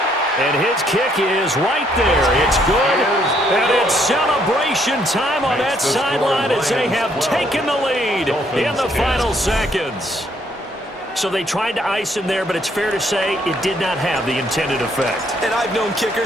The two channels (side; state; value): both; normal; correlation 0.69